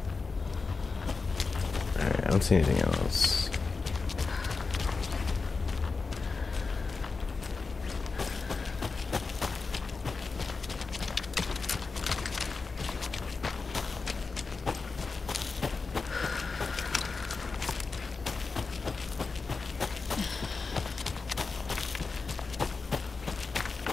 Alright, I don't see anything else.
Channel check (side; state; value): right; quieter; 4.3 dB